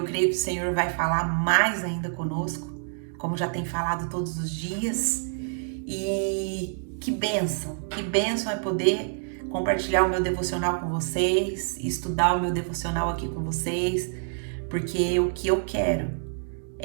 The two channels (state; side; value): silent; left; digital silence